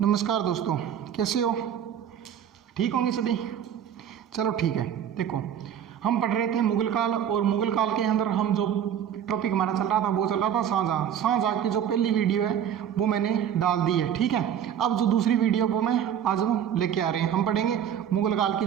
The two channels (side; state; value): left; quieter; 9.4 dB